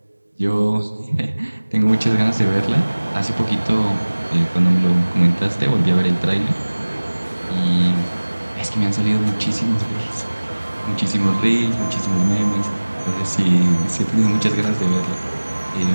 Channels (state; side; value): inverted; both; correlation -1.00